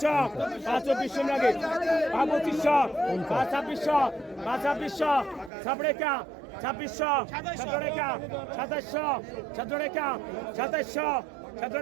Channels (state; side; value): drops out; left; at 5.5 s